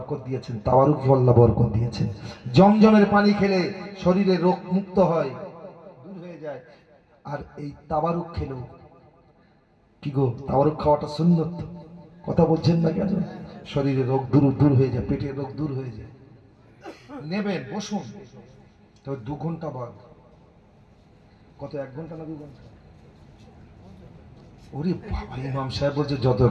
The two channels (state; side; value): identical; both; correlation 1.00